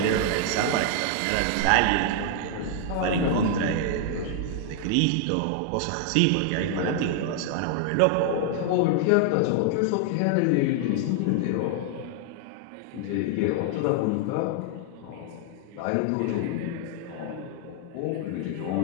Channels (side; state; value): both; different; correlation 0.00